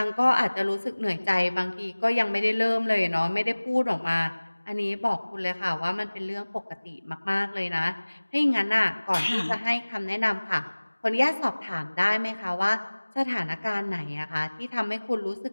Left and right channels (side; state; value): both; inverted; correlation -1.00